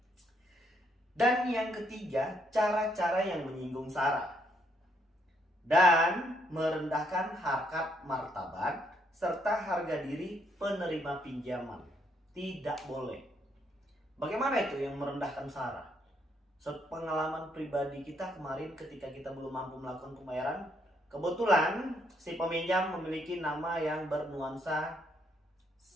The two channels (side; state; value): both; normal; correlation 0.73